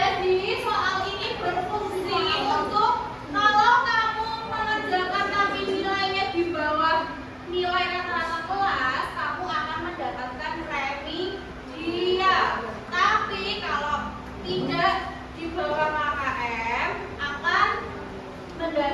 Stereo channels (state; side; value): identical; both; correlation 1.00